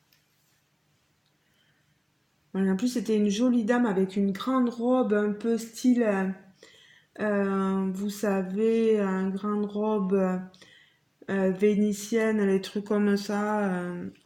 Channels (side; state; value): both; identical; correlation 1.00